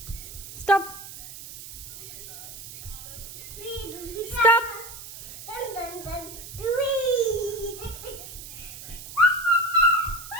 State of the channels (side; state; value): right; noise; hiss, 12 dB below the sound